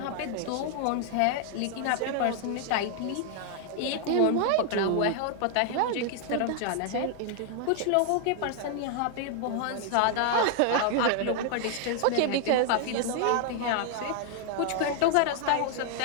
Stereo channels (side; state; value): both; different; correlation 0.00